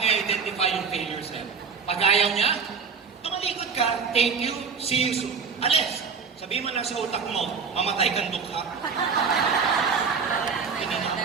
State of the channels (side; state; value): left; quieter; 5.6 dB